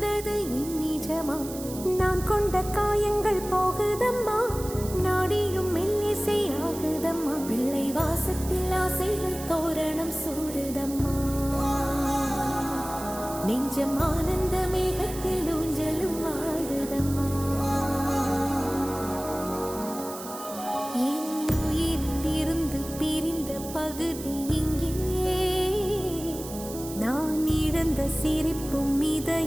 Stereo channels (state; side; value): noise; right; hiss, 12 dB below the sound